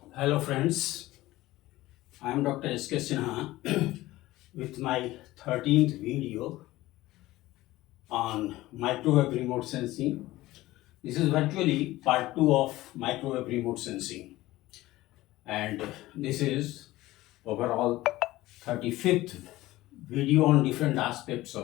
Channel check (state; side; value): quieter; right; 17.4 dB